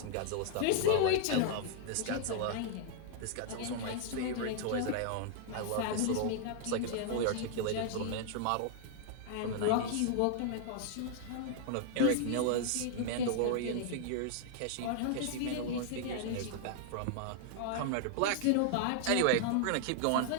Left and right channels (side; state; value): both; different; correlation -0.01